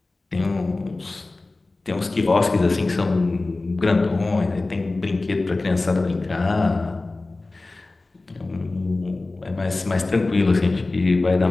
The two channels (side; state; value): right; quieter; 3.2 dB